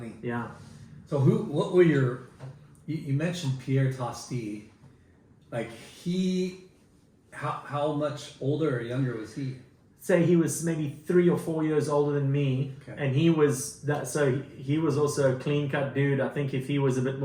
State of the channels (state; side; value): identical; both; correlation 1.00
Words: Yeah. So what were you mentioned Pierre Tosti, like how much older or younger was he? Say he was maybe 3 or 4 years older than me, Okay. and he was he was also a clean cut dude. I think if he was a bit